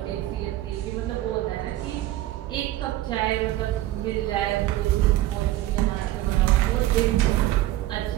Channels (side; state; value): left; quieter; 15.1 dB